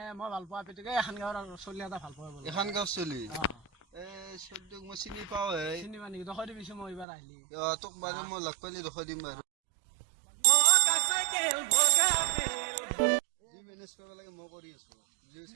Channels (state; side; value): drops out; left; at 7.1 s